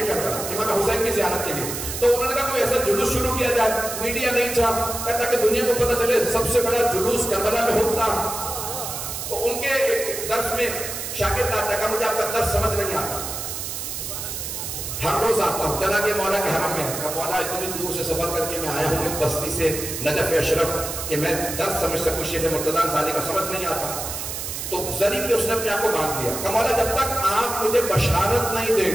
کربلا امام حسین کی زیارت کے لیے. تو انہوں نے کہا کوئی ایسا جلوس شروع کیا جائے. میڈیا نہیں تھا، کہتا کہ دنیا کو پتہ چلے سب سے بڑا جلوس کربلا میں ہوتا. تو ان کے ایک درس میں شاگرد آتا کہ مجھے آپ کا درس سمجھ نہیں آتا، ہر روز آتا ہوں. چلا کہ مولا کے حرم میں، کہ مولا اتنی دور سے سفر کر کے میں آیا ہوں ایک بستی سے نجف اشرف کہ میں درس سمجھ سکوں. شیخ مرتضی انصاری کا سمجھ نہیں آتا. تو ذریعے پہ اس نے اپنے آپ کو باندھ لیا کہ مولا جب تک آپ مجھے بشارت نہیں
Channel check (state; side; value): noise; right; hiss, 6 dB below the sound